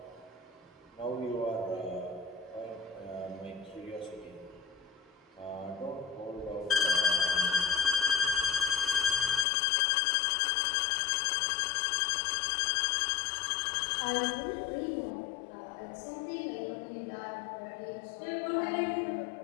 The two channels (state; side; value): drops out; right; at 9.5 s